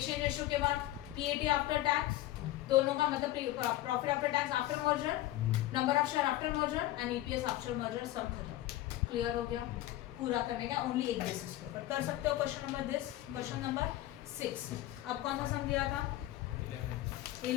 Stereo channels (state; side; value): quieter; right; 15.3 dB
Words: रेशियो के बाद PAT आफ्टर टैक्स, दोनों का मतलब profit after tax after merger, number of share after merger and EPS after merger. सब खत्म. क्लियर हो गया? पूरा करने का ओनली एक बेसिस पे पर कर सकते हो. Question number this, question number 6. अब कौन सा सम दिया था?